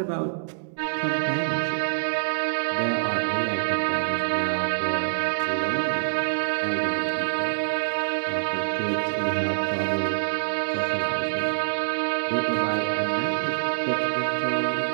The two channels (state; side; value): silent; left; 61 dB below the other